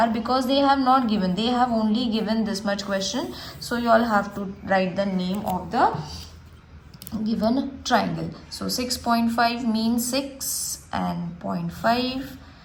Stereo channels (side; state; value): both; identical; correlation 1.00